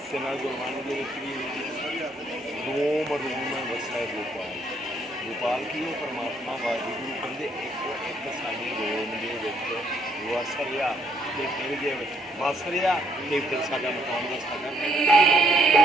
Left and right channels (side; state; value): both; normal; correlation 0.69